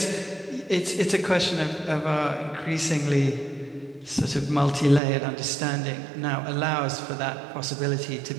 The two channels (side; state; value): left; drops out; at 5.0 s